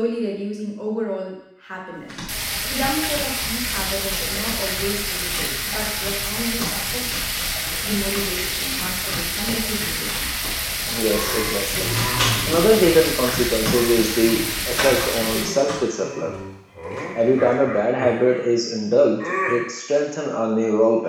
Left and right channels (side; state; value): both; identical; correlation 1.00